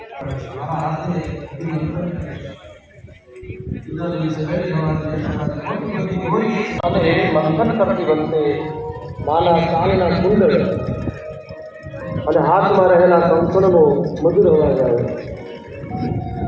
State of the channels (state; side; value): identical; both; correlation 1.00